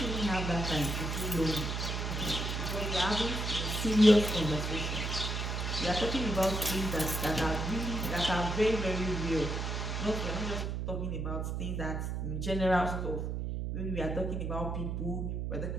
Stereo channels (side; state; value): right; noise; hum, 2 dB below the sound